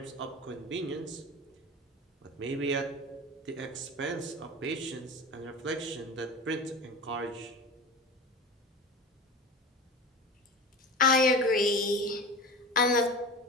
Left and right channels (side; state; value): both; normal; correlation 0.32